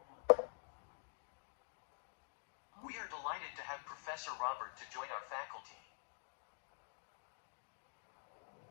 We are delighted to have Professor Robert to join our faculty.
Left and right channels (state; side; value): silent; right; digital silence